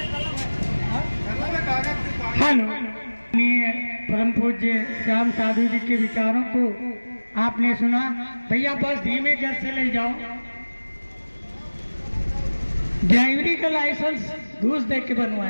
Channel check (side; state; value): both; inverted; correlation -1.00